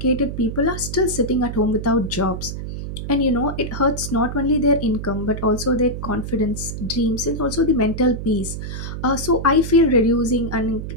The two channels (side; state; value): right; noise; hum, 7 dB below the sound